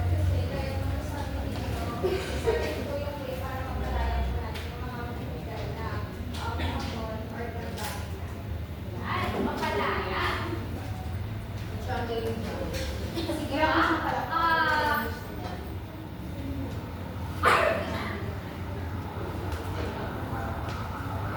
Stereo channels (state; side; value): identical; both; correlation 1.00